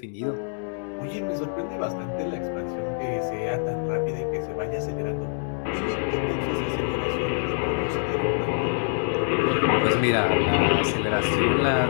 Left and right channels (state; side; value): silent; right; digital silence